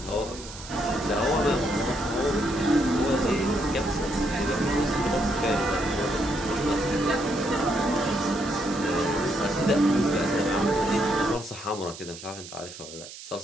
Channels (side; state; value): right; noise; hiss, 14 dB below the sound